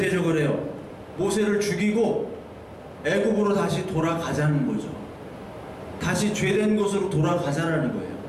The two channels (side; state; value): both; identical; correlation 1.00